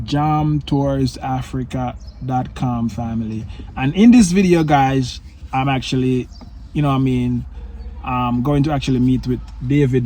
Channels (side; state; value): both; identical; correlation 1.00